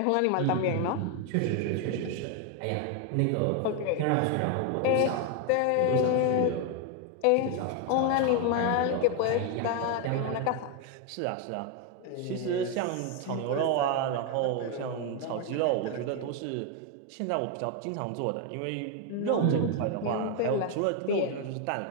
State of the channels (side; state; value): both; different; correlation 0.01